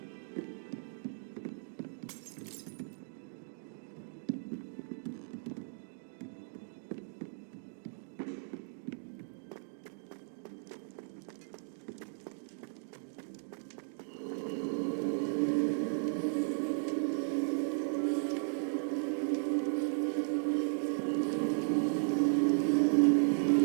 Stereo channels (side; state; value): left; silent; digital silence